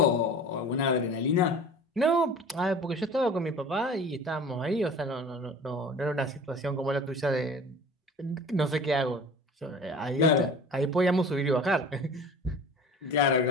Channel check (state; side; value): normal; both; correlation 0.41